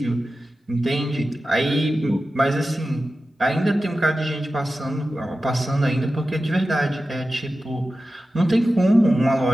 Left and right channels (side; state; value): both; normal; correlation 0.94